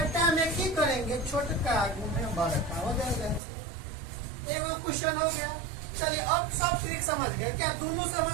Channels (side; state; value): left; drops out; at 3.4 s